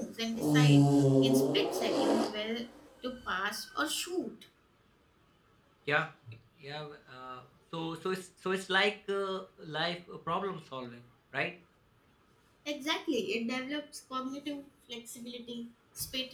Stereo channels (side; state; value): both; identical; correlation 1.00